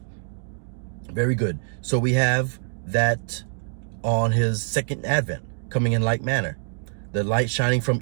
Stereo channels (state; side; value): silent; left; digital silence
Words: Very good. So we have that on his second advent, coming in like manner. The light shining from